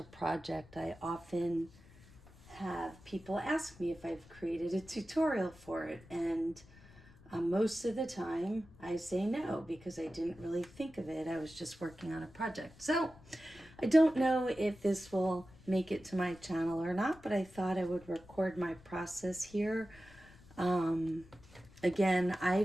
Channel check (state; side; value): noise; left; rumble, 23 dB below the sound